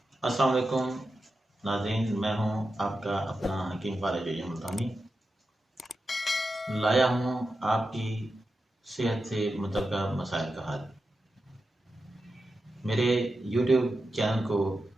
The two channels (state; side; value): normal; both; correlation 0.90